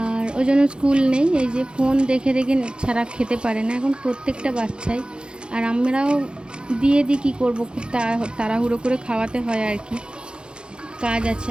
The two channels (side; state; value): left; late; 0.051 ms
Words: ওই জন্য স্কুল নেই। এই যে ফোন দেখে দেখে ছাড়া খেতে পারে না এখন প্রত্যেকটা বাচ্চাই। আর আমরাও দিয়ে দিই, কী করবো, খুব তাড়াহুড়ো করে খাওয়াতে হয় আর কি, কাজ আছে।